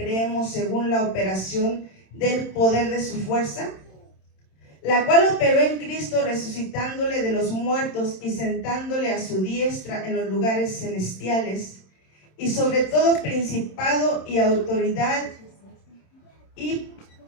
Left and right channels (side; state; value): right; late; 27 ms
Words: según la operación del poder de su fuerza, la cual operó en Cristo, resucitándole de los muertos y sentándole a su diestra en los lugares celestiales, y sobre todo principado y autoridad y